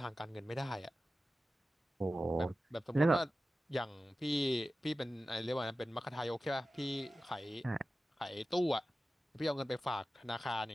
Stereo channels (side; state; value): both; normal; correlation 0.95